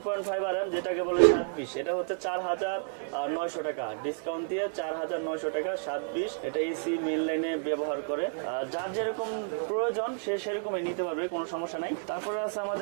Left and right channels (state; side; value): silent; left; 57 dB below the other